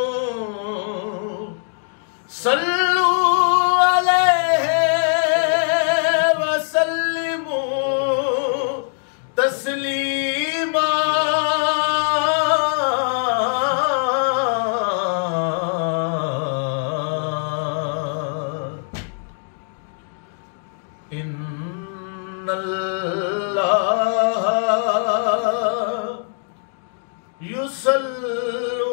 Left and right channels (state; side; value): silent; right; digital silence